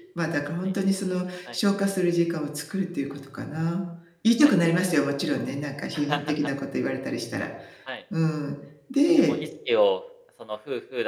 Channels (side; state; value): both; identical; correlation 1.00